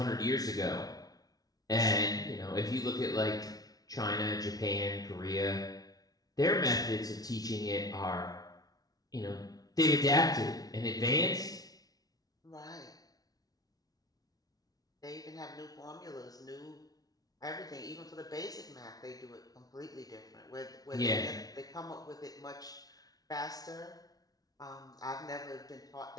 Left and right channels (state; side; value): late; right; 0.18 ms